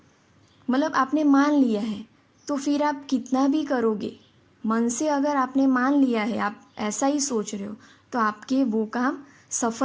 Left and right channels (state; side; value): identical; both; correlation 1.00